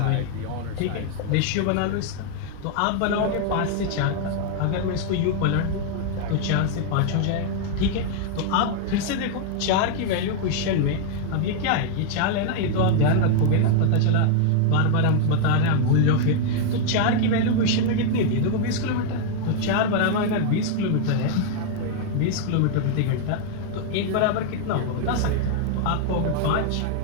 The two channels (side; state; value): both; different; correlation 0.00